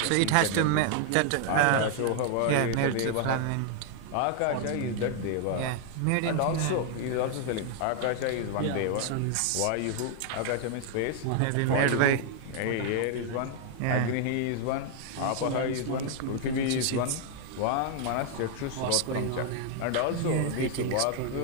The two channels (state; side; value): different; both; correlation 0.00